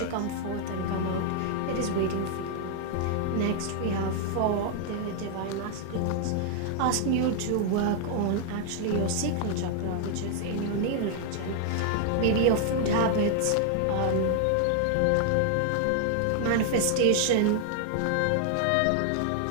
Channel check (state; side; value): different; both; correlation 0.00